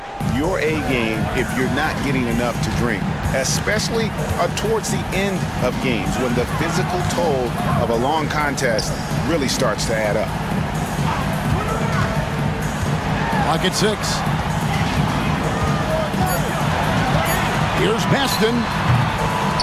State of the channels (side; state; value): both; identical; correlation 1.00